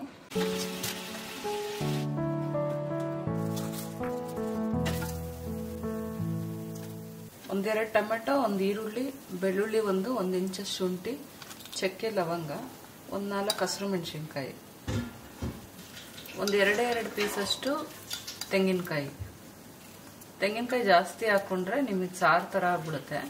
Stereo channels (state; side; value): identical; both; correlation 1.00